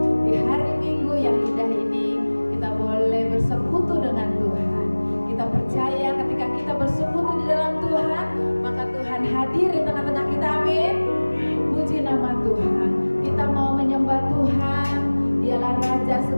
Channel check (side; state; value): both; inverted; correlation -1.00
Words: di hari Minggu yang indah ini. Kita boleh bersekutu dengan Tuhan. Kita percaya ketika kita bersekutu di dalam Tuhan, maka Tuhan hadir di tengah-tengah kita. Amin. Puji nama Tuhan. Kita mau menyembah Tuhan. Dialah Raja